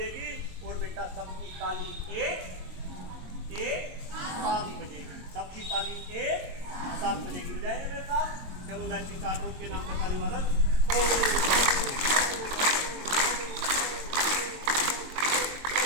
और बेटा सबकी ताली एक साथ बजेगी। सबकी ताली एक साथ बजेगी। बजाएंगे मेरे साथ? चलो लाइन चार्ट के नाम पे ताली वादन।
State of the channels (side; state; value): left; late; 22 ms